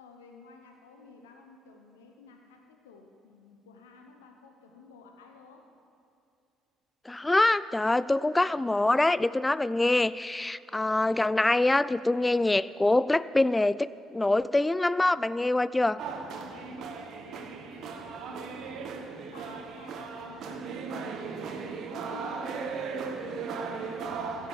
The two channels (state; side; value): normal; both; correlation 0.96